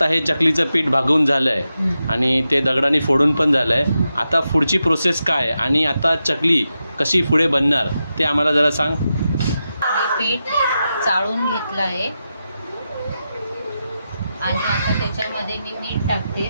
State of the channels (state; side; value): inverted; both; correlation -0.89